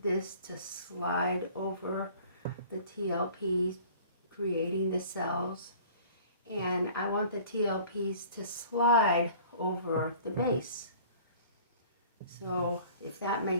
this to slide over the TLPs, creating the cells, and I want the TLPs to slide over the base. So if that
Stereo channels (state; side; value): inverted; both; correlation -0.48